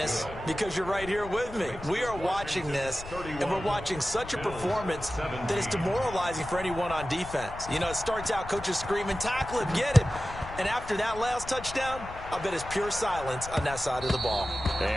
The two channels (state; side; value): noise; left; rumble, 13 dB below the sound